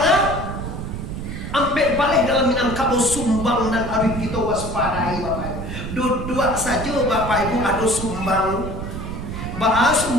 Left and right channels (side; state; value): right; noise; rumble, 6 dB below the sound